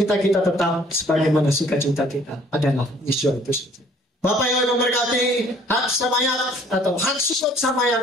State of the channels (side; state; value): both; normal; correlation 0.58